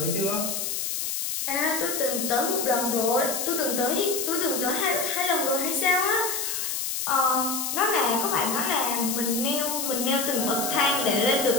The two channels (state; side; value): noise; left; hiss, 2 dB below the sound